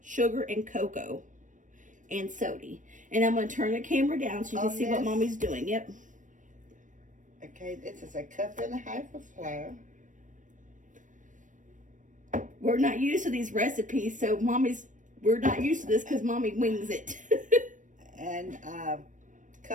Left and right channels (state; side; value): late; left; 0.37 ms